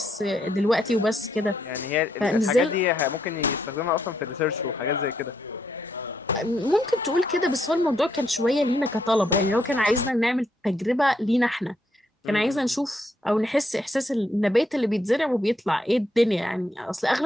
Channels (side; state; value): both; normal; correlation 0.76